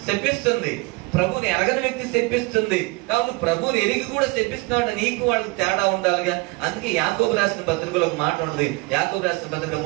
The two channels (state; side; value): quieter; left; 24.8 dB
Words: శపిస్తుంది, ప్రభుని ఎరగని వ్యక్తి శపిస్తుంది. కాబట్టి ప్రభుని ఎరిగి కూడా శపిస్తున్నాడు, నీకు వాళ్ళకి తేడా ఉండాలిగా. అందుకే యాకోబు రాసిన పత్రికలో ఒక మాట ఉంటుంది. యాకోబు రాసిన పత్రిక